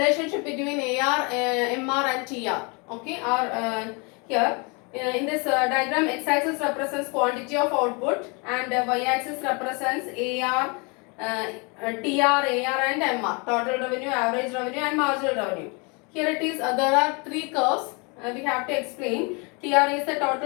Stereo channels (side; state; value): right; quieter; 31.4 dB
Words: between AR, MR and TR. Okay, are here. In this diagram, x-axis represents quantity of output and y-axis represents AR, TR, AR and MR. Total revenue, average revenue and marginal revenue. Here it is, there are three curves we have to explain. TR is the